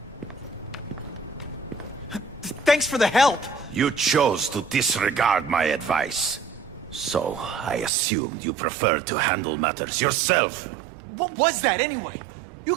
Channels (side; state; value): left; drops out; at 7.9 s